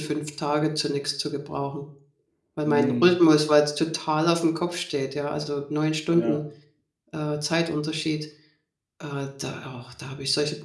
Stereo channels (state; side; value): identical; both; correlation 1.00